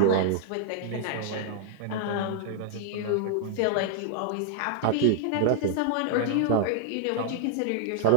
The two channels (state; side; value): different; both; correlation -0.01